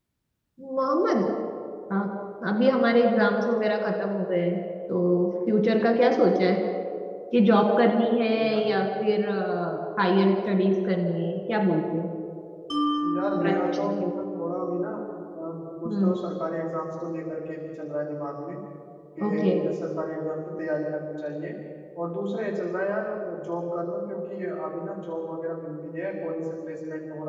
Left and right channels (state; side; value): identical; both; correlation 1.00